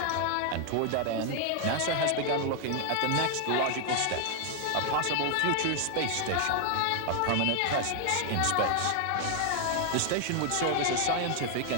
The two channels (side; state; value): both; different; correlation 0.00